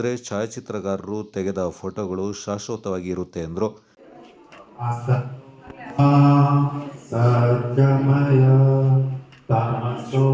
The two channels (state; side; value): identical; both; correlation 1.00